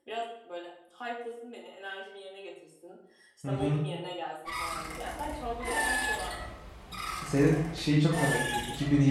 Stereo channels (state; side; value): identical; both; correlation 1.00